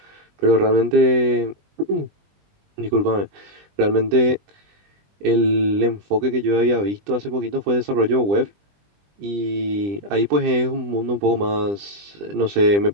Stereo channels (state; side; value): late; left; 20 ms